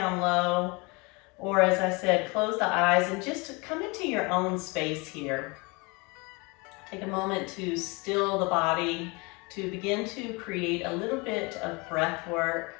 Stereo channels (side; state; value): right; quieter; 27.8 dB